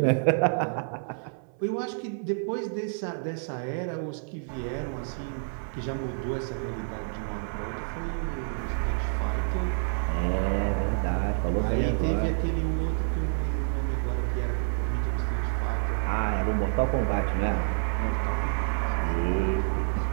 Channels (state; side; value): silent; left; 59 dB below the other